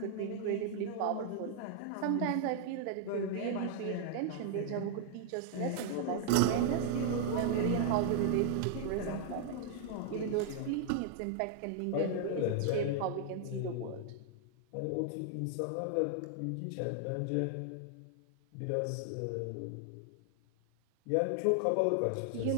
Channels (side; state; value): both; different; correlation 0.00